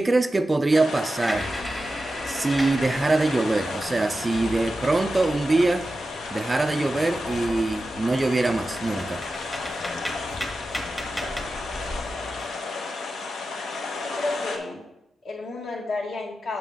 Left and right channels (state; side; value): normal; both; correlation 0.92